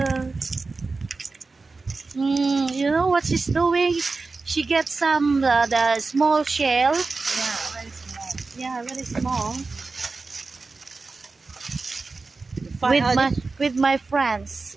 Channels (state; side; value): quieter; left; 3.9 dB